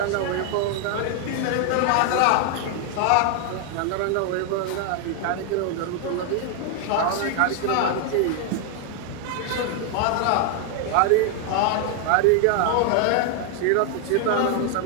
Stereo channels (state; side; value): different; both; correlation 0.00